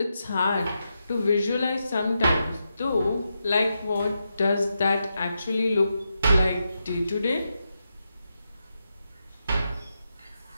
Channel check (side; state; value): both; inverted; correlation -0.86